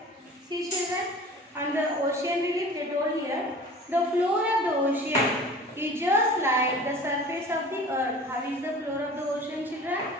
See, children, on the ocean relief they told here, the floor of the ocean is just like the surface of the earth. How is the floor of the ocean, children?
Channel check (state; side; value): normal; both; correlation 0.42